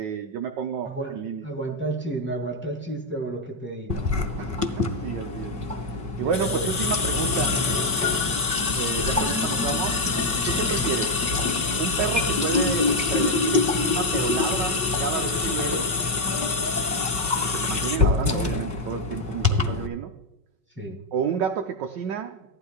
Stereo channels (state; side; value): late; left; 5.4 ms